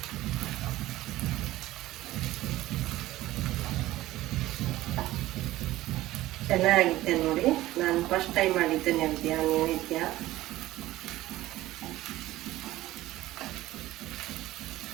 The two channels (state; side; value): quieter; left; 16.3 dB